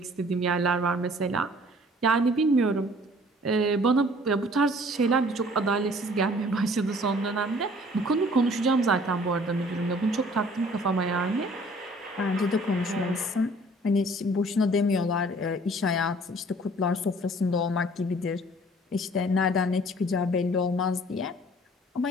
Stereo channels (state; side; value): normal; both; correlation 0.54